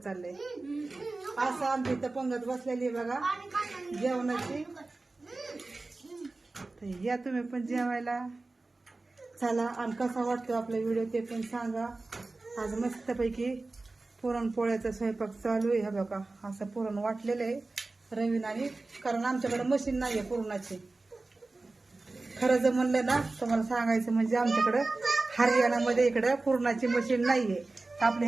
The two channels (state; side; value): quieter; left; 3.3 dB